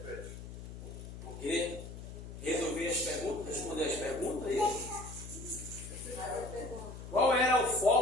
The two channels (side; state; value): left; noise; hum, 11 dB below the sound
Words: Ok? Resolver as perguntas, responder as perguntas aí. Qual era o